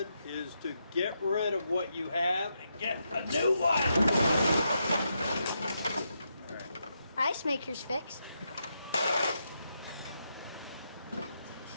is to get rid of what you have and get a new one. All right. Ice maker's fixed.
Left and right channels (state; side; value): inverted; both; correlation -0.82